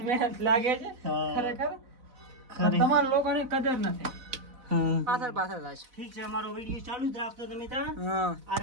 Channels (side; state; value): left; late; 4.0 ms